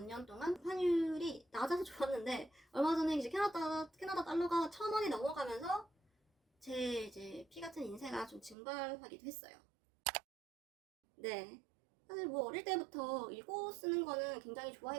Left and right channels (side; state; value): left; drops out; at 8.6 s